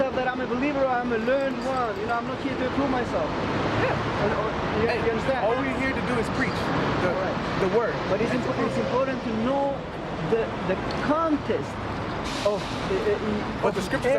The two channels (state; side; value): identical; both; correlation 1.00